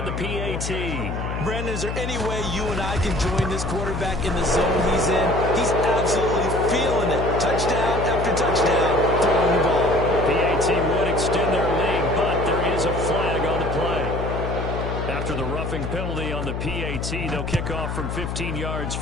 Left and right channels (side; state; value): left; noise; hum, 4 dB below the sound